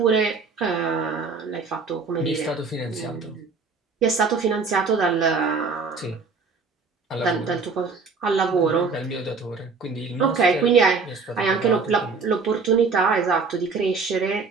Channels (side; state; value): left; quieter; 4.6 dB